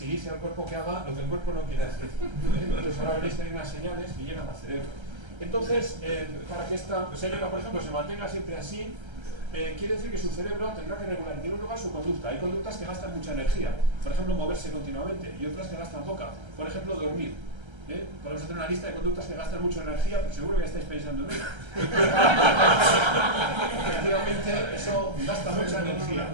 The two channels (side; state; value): left; late; 1.3 ms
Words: dice al cuerpo que haga lo que el cuerpo no quiere hacer. Entonces, ahora veréis que hay unas señales que llegan al cerebro. Entonces, para que esta señora, por ejemplo, se mantenga siempre así, quiere decir que su cerebro tendrá que regular en primer lugar su conducta. Hay conductas que gastan mucha energía, por ejemplo, moverse continuamente, y otras que gastan poca, por ejemplo, dormir. Podemos hacer una lista de conductas que gastan mucha energía, pero seguro que estáis pensando en ello. Efectivamente, eso gasta mucha energía,